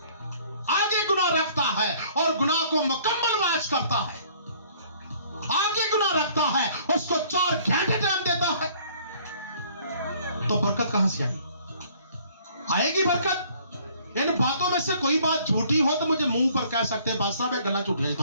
आगे गुनाह रखता है और गुनाह को मुकम्मल मैच करता है, आगे गुनाह रखता है, उसको 4 घंटे टाइम देता है। तो बरकत कहां से आएगी? बरकत इन बातों में से कोई बात झूठी हो तो मुझे मुंह पर कह सकते हैं, बादशाह मैं गला झूठ नहीं,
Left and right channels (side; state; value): both; inverted; correlation -0.57